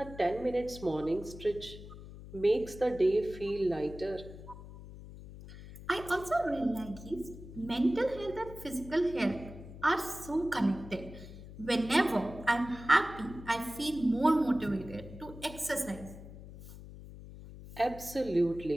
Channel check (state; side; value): noise; left; hum, 14 dB below the sound